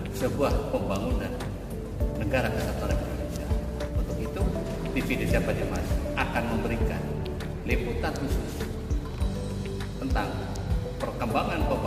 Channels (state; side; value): identical; both; correlation 1.00